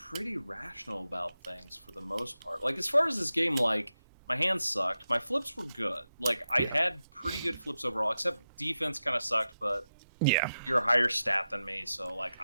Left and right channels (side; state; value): both; inverted; correlation -0.90